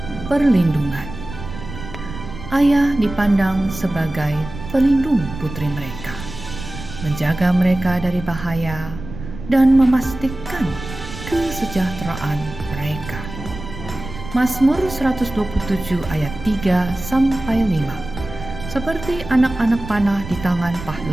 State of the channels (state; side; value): noise; right; rumble, 11 dB below the sound